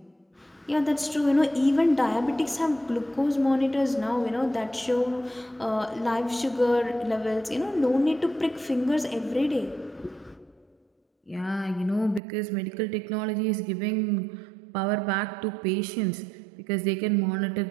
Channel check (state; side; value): drops out; left; at 12.2 s